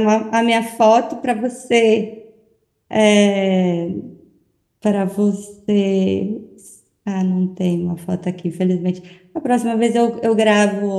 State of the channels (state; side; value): identical; both; correlation 1.00